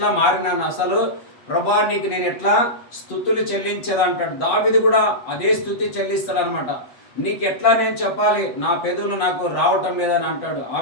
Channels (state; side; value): late; right; 8.1 ms